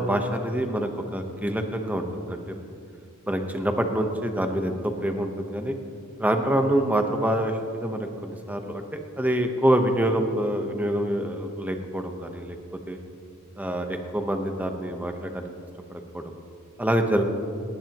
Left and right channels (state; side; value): normal; both; correlation 0.73